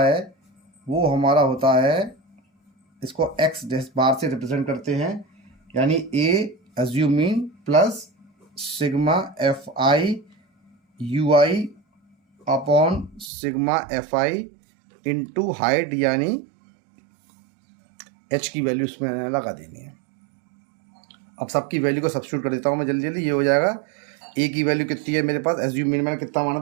है वो हमारा होता है, इसको x बार से रिप्रेजेंट करते हैं, यानी A assume mean plus sigma FIUI upon sigma FI into height, यानी h की वैल्यू इसमें लगा देनी है। अब सबकी वैल्यू को सब्स्टिट्यूट कर देता हूँ मैं जल्दी जल्दी। ये हो जाएगा A की वैल्यू कितनी है मेरे पास, एज्यूम मीन मैंने कितना माना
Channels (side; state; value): left; drops out; at 13.3 s